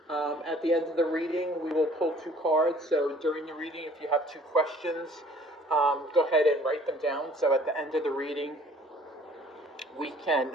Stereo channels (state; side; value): normal; both; correlation 0.55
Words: At the end of the reading, we will pull two cards. So during the reading, if you have two questions, go ahead and write them down. So at the end of the reading, we can